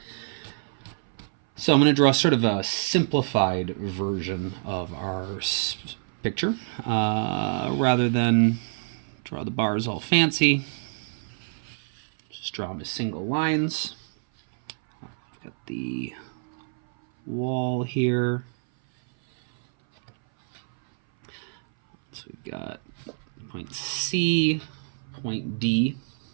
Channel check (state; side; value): silent; left; 58 dB below the other